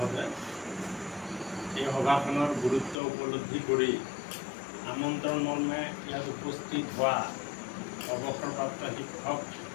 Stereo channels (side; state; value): right; drops out; at 3.0 s